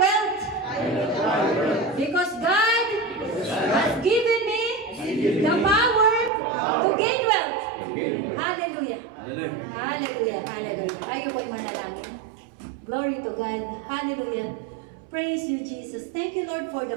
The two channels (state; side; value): drops out; left; at 6.3 s